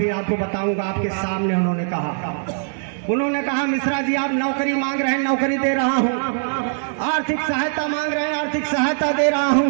आपको बताऊंगा। आपके सामने उन्होंने कहा उन्होंने कहा मिश्रा जी आप नौकरी मांग रहे हैं, नौकरी दे रहा हूं, आर्थिक सहायता मांग रहे हैं, आर्थिक सहायता दे रहा हूं,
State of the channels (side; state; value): left; silent; digital silence